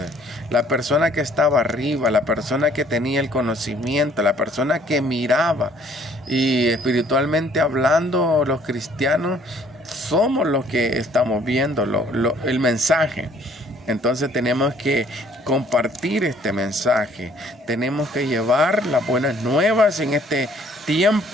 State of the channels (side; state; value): both; normal; correlation 0.59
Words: La persona que estaba arriba, la persona que tenía el conocimiento, la persona que miraba. Y espiritualmente hablando, los cristianos somos los que estamos viendo el mensaje. Entonces tenemos que compartir este mensaje. Tenemos que llevar las buenas nuevas en este